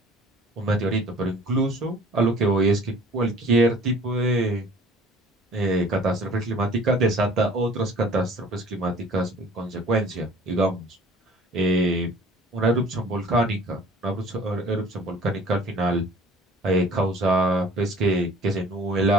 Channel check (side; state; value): both; normal; correlation 0.49